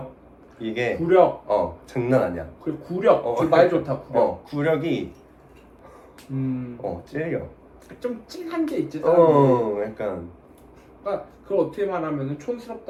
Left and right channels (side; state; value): both; identical; correlation 1.00